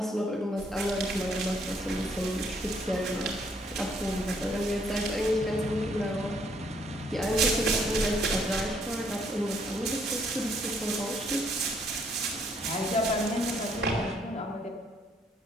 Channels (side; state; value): both; normal; correlation 0.68